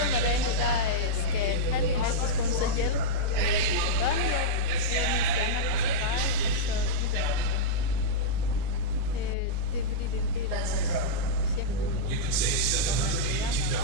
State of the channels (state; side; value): different; both; correlation -0.06